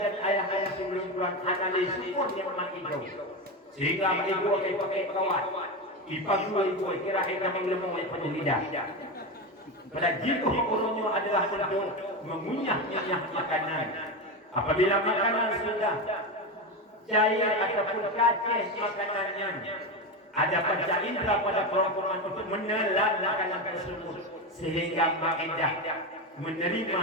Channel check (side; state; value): both; normal; correlation 0.17